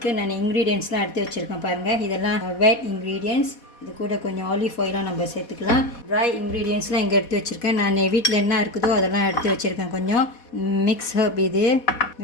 நான் இன்க்ரீடியன்ட்ஸ்லாம் எடுத்து வச்சுருக்கேன் பாருங்கள். இதெல்லாம் வெட் இன்க்ரீடியன்ட்ஸ். இது கூட கொஞ்சம் ஆலிவ் ஆயிலும் நம்ம சேர்த்துக்கலாம். ட்ரை இன்க்ரீடியன்ட்ஸ்லாம் இங்கே எடுத்து வச்சுருக்கேன். நான் வீட்டில் என்ன இருக்குதோ அதெல்லாம் எடுத்து வச்சுருக்கேன். கொஞ்சம் மிக்ஸ் ஹர்ப், இது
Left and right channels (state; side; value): late; right; 4.2 ms